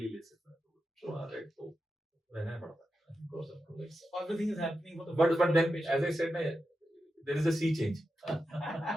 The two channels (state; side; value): normal; both; correlation 0.89